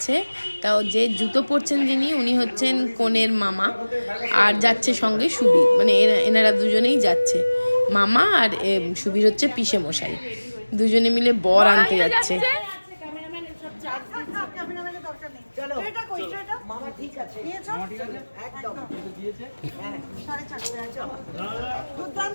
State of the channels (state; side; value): inverted; both; correlation -1.00